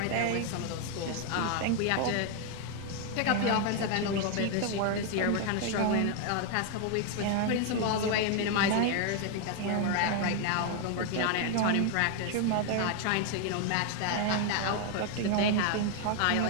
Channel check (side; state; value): both; different; correlation 0.00